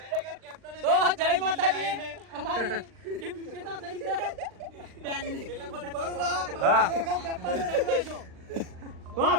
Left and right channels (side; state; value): left; late; 39 ms